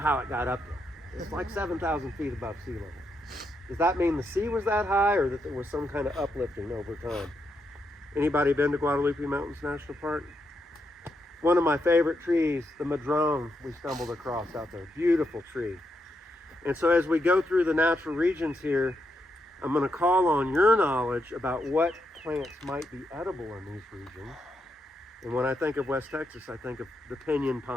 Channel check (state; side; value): normal; both; correlation 0.81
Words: how it got up there. It's like 7,000 feet above sea level. Does that mean the sea was that high, or that there was some kind of uplifting over time? Anybody been to Guadalupe Mountains National Park? One of my favorite trees, the madrone, we stumbled across out there. Beautiful tree. And so as we go through the natural regions here, I'm going to call on your knowledge about what plants might be edible in these regions. And when I think of West Texas, I think of the pinyon